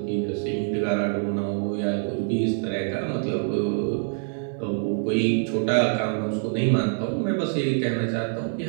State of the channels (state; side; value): silent; left; digital silence